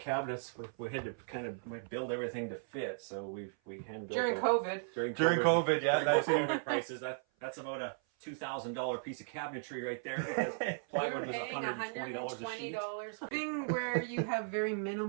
We had to kind of build everything to fit, so we hand built during COVID. During COVID, yeah, that's COVID prices. That's about a $2,000 piece of cabinetry right there. Because plywood was $120 a sheet. Thing where you have very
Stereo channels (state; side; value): silent; left; 54 dB below the other